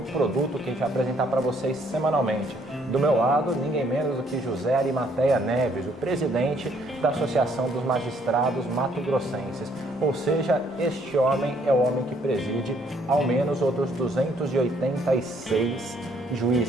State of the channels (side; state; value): both; normal; correlation 0.66